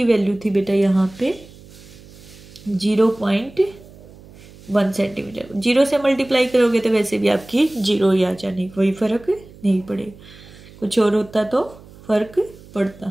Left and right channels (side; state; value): right; noise; hum, 21 dB below the sound